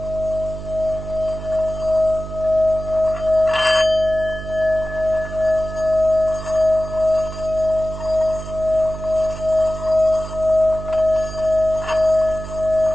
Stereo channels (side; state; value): right; noise; hum, 10 dB below the sound